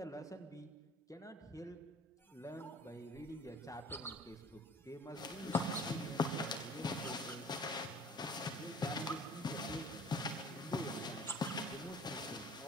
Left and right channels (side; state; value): both; normal; correlation 0.48